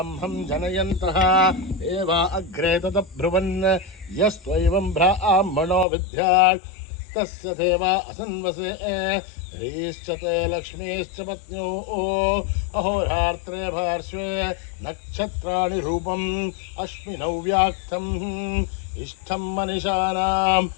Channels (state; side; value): drops out; right; at 5.9 s